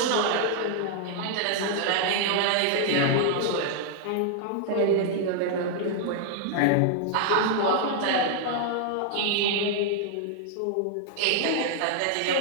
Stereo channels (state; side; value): different; both; correlation -0.01